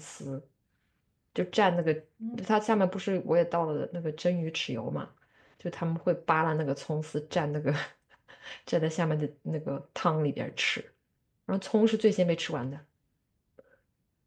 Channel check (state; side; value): identical; both; correlation 1.00